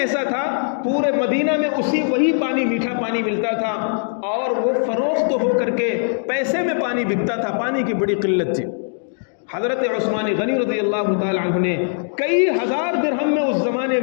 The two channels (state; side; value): silent; right; digital silence